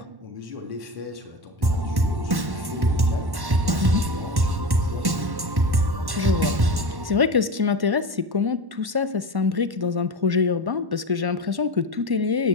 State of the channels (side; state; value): left; late; 1.1 ms